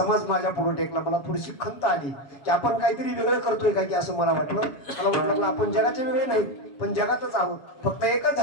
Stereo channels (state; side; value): late; right; 7.2 ms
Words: माझ्या पुढे टेकला. मला थोडीशी खंत आली की आपण काहीतरी वेगळं करतोय का की असं मला वाटलं. मला वाटलं आपण जगाचे वेगळे नाही, पण जगातच आहोत. फक्त एकच